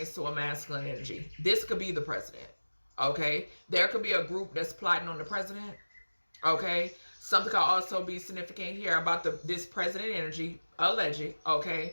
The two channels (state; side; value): inverted; both; correlation -1.00